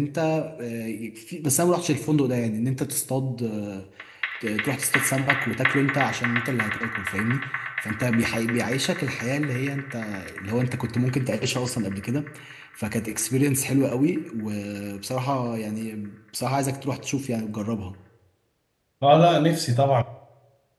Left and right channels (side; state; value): both; identical; correlation 1.00